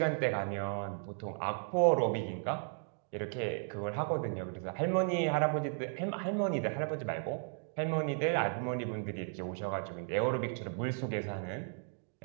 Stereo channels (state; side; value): silent; left; 54 dB below the other